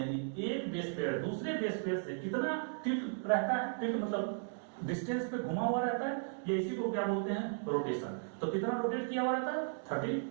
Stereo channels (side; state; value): left; silent; digital silence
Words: एक बेस पेयर दूसरे बेस पेयर से कितना टिल्ट रहता है, टिल्ट मतलब डिस्टेंस पे घुमा हुआ रहता है, ये इसी को क्या बोलते हैं रोटेशन। तो कितना रोटेट किया हुआ रहता है